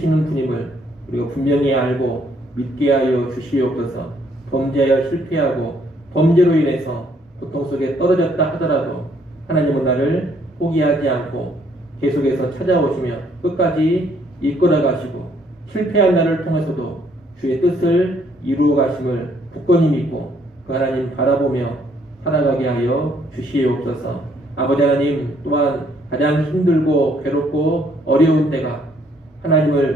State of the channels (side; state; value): both; normal; correlation 0.67